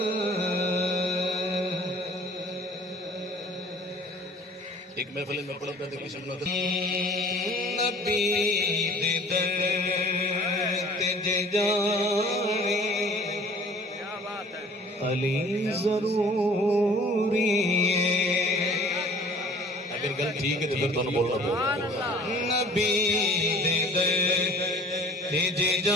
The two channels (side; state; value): both; normal; correlation 0.49